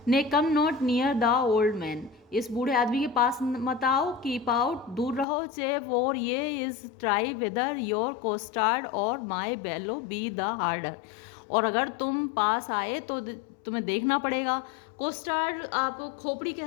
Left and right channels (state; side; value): drops out; right; at 5.2 s